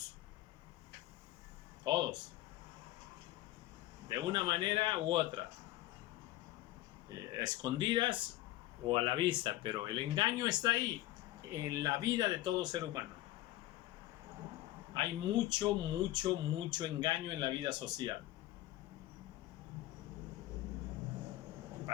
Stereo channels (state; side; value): quieter; right; 16.0 dB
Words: Todos. De una manera u otra. Escondidas o a la vista, pero el engaño está ahí, en la vida de todo ser humano. Hay mucho engaño en la vida social.